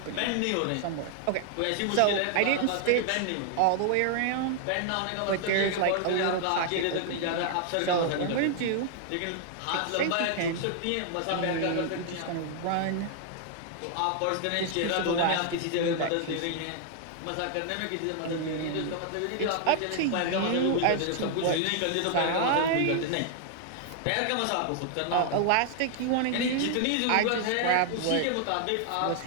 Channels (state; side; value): different; both; correlation 0.00